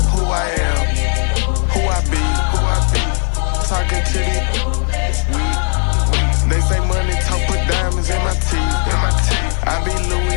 who I am, who I be. Talking to the weed. They say money talk, put diamonds in my teeth. I be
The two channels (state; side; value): silent; right; 56 dB below the other